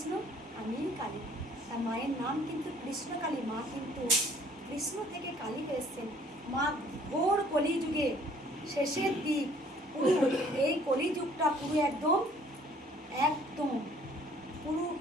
আমিই কালী। তার মায়ের নাম কিন্তু কৃষ্ণকালী। মা কিন্তু কৃষ্ণ থেকে কালীকে এসছেন। মা ঘোর কলিযুগে শেষের দিক, পুরো এই কলিযুগটা পুরো একদম পুরো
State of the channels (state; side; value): normal; both; correlation 0.57